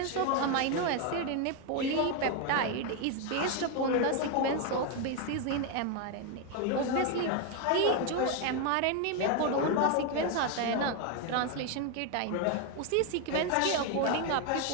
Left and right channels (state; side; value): different; both; correlation 0.01